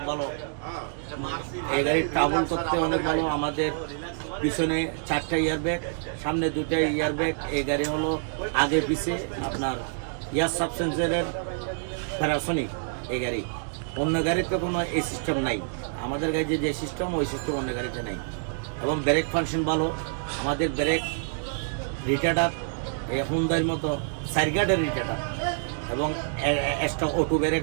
ভালো। এই গাড়ির ট্রাভেল করতে অনেক ভালো। আমাদের পিছনে 4টা ইয়ারব্যাগ, সামনে 2টা ইয়ারব্যাগ। এই গাড়ি হলো আগে পিছে আপনার ইয়ার সাবসেন্সারের প্যারাসনিক। এই গাড়ি অন্য গাড়িতে কোনো এই সিস্টেম নাই। আমাদের গাড়িতে যে সিস্টেম, ওই সিস্টেম অন্য গাড়িতে নাই। এবং ব্রেক ফাংশন ভালো। আমাদের ব্রেক রিটার্ডার এই হুন্ডার মতো সাইরগার্ডের রিটার্ডার, এবং এক্সট্রা অটো ব্রেক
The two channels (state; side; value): silent; left; digital silence